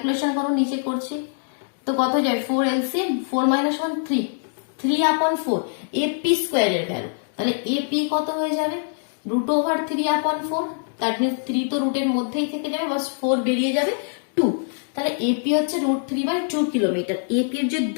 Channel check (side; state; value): right; silent; digital silence